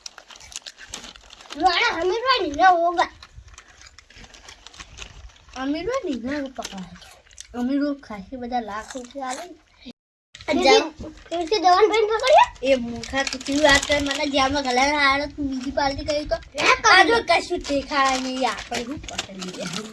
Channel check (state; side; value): identical; both; correlation 1.00